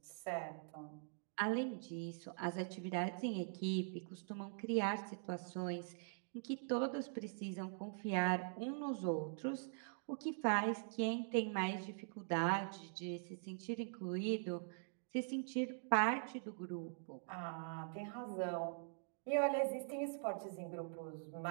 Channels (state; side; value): silent; left; digital silence